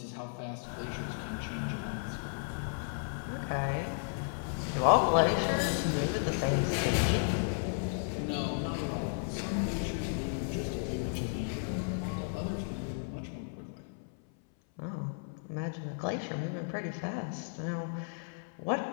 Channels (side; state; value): right; silent; 55 dB below the other